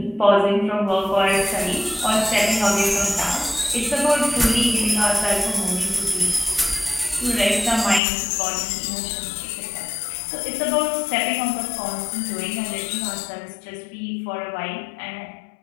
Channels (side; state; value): right; drops out; at 8.0 s